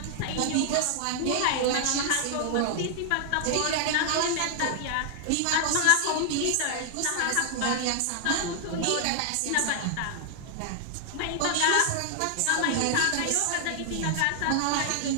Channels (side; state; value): both; different; correlation 0.00